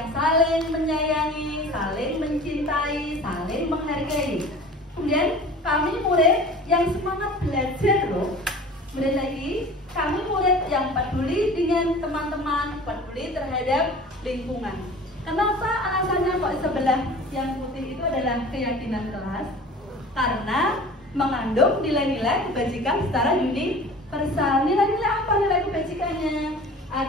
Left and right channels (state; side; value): normal; both; correlation 0.41